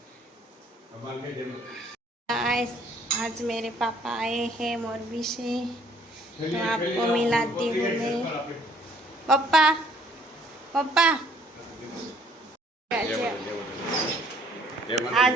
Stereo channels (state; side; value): normal; both; correlation 0.61